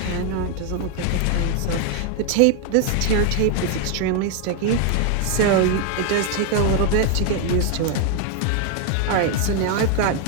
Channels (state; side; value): different; both; correlation 0.00